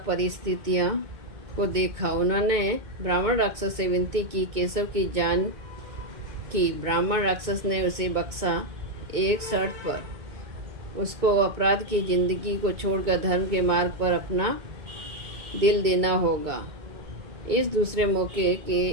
को देखा। उन्होंने ब्राह्मण राक्षस से विनती की, केशव की जान की। ब्राह्मण राक्षस ने उसे बख्शा, एक शर्त पर। उसको अपराध की जिंदगी को छोड़कर धर्म के मार्ग पर अपना दिल देना होगा। इस दूसरे मौके के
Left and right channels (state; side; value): late; left; 2.2 ms